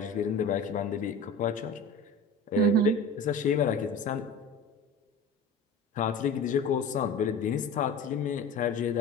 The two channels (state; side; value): quieter; right; 3.1 dB